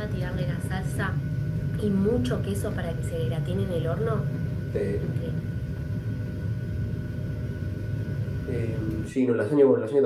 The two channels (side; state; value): both; identical; correlation 1.00